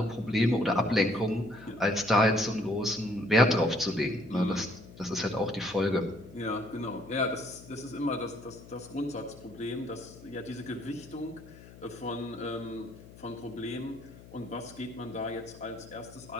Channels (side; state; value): left; noise; hum, 19 dB below the sound